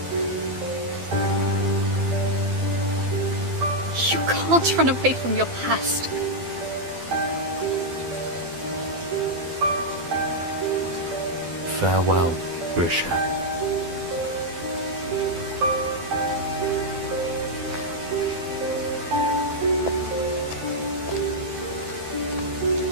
You can't run away from your past. Farewell, Grisha.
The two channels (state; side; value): late; left; 12 ms